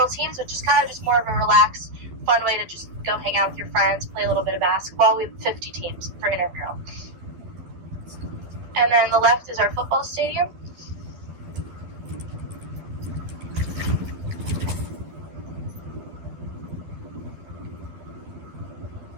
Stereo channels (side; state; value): left; late; 12 ms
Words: teams, which is kind of just more of a relaxed, fun way to just go hang out with your friends, play a little bit of basketball. We have 50 teams for intramural. And then the left is our football stadium.